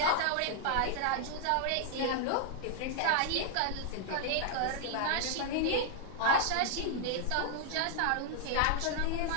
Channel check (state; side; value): different; both; correlation -0.01